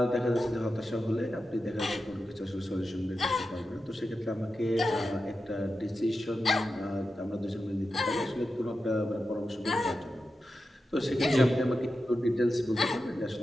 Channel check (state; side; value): normal; both; correlation 0.91